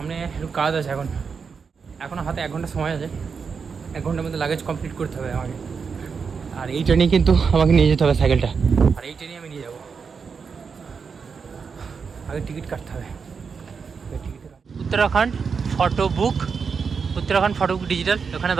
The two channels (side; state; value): left; quieter; 5.7 dB